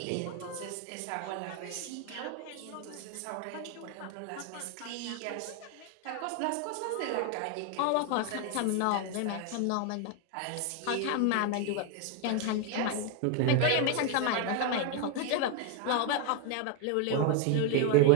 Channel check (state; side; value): different; both; correlation 0.01